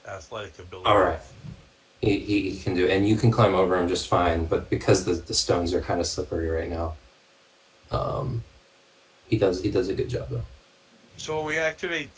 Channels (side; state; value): both; identical; correlation 1.00